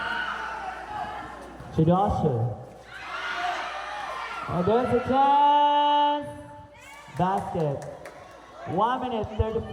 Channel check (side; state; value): both; identical; correlation 1.00